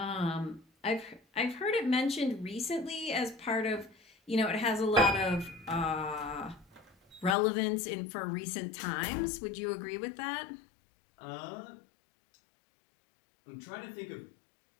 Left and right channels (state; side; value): drops out; right; at 7.4 s